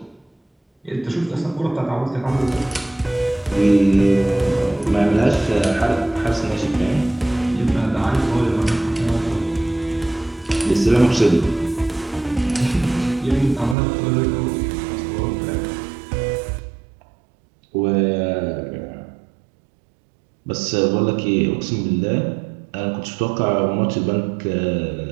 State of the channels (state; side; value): drops out; left; at 13.8 s